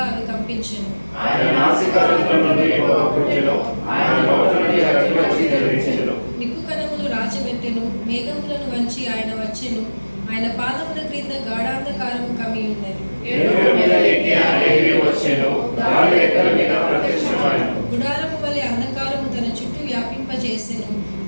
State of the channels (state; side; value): inverted; both; correlation -1.00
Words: అవి కంపించెను. నిప్పు కణములు రాజబెట్టెను, మేఘములను వంచి ఆయన వచ్చెను. ఆయన పాదముల క్రింద గాఢాంధకారము కమ్మి ఉన్నది. గుడారము వలె అంధకారము తన చుట్టూ వ్యాపింపజేసెను.